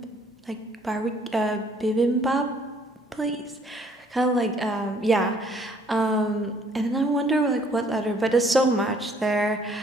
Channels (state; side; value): normal; both; correlation 0.61